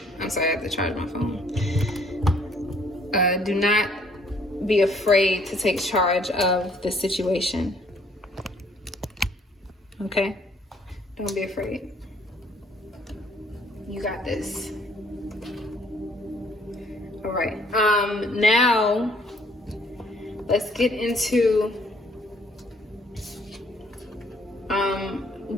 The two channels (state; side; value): normal; both; correlation 0.62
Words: I'm sorry, I have to charge my phone. Do not be afraid to take charge of the situation. Okay? Don't be afraid. You got this. All right. Now let's get into